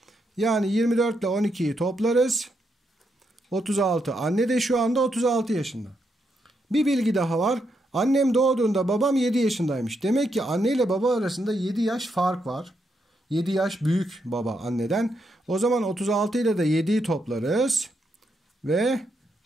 Yani 24 ile 12'yi toplarız. 36. Anne de şu anda 36 yaşında. Bir bilgi daha var. Annem doğduğunda babam 7 yaşındaymış. Demek ki anne ile baba arasında 7 yaş fark var. 7 yaş büyük baba anneden. O zaman 36 ile de 7'yi toplarız. Ve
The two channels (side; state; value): both; normal; correlation 0.80